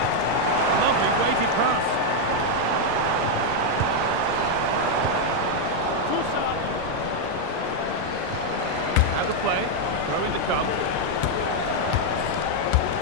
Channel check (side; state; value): both; different; correlation 0.00